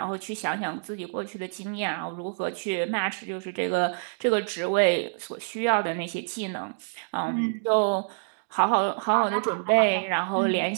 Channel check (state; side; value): silent; left; digital silence